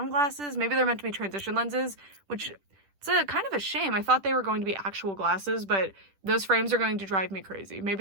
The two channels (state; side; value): late; left; 10 ms